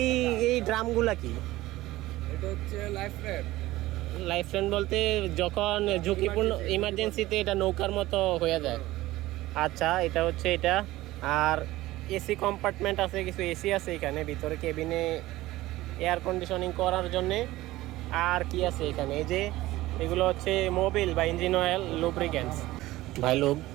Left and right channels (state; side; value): quieter; left; 17.3 dB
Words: ড্রামগুলা কি? এটা হচ্ছে লাইফ ফ্রেন্ড বলতে যখন ঝুঁকিপূর্ণ ইমার্জেন্সিতে এটা নৌকার মতো হয়ে যায়। আচ্ছা, এটা হচ্ছে এটা। আর এসি কম্পার্টমেন্ট আছে, কিছু এসি আছে এখানে ভিতরে কেবিনে এয়ার কন্ডিশনিং করার জন্যে। আর কি আছে এখানে? এই যে এগুলো হচ্ছে মোবিল বা ইঞ্জিন অয়েল, লুব্রিকেন্টস। ভাই লোক,